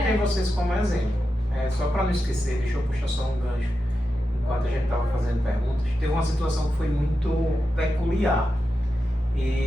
tem vocês como exemplo. Só para não esquecer, deixa eu puxar só um gancho. Enquanto a gente estava fazendo perguntas, teve uma situação que foi muito peculiar.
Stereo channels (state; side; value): normal; both; correlation 0.90